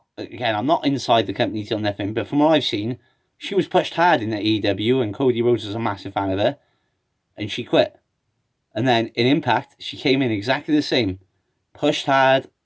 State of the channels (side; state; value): both; identical; correlation 1.00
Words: inside the company till nothing, but from what I've seen, she was pushed hard in the AEW, and Cody Rhodes was a massive fan of her, and she quit. And then in Impact, she came in exactly the same. Pushed hard.